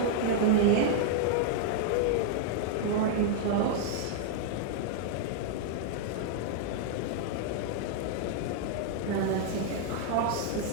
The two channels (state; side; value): different; both; correlation -0.01